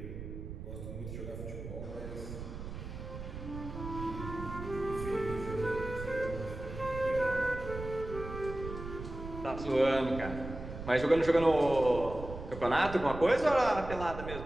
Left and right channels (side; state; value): right; noise; rumble, 9 dB below the sound